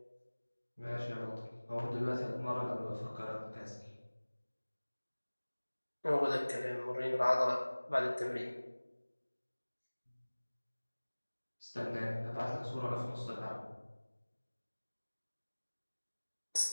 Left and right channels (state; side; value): inverted; both; correlation -1.00